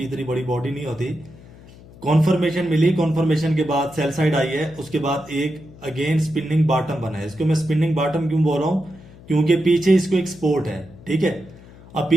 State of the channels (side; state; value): left; noise; hum, 21 dB below the sound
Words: इतनी बड़ी बॉडी नहीं होती। कॉन्फर्मेशन मिली, कॉन्फर्मेशन के बाद सेल साइड आई है, उसके बाद एक अगेन स्पिनिंग बॉटम बना है। इसको मैं स्पिनिंग बॉटम क्यों बोल रहा हूं, क्योंकि पीछे इसको एक सपोर्ट है, ठीक है। अब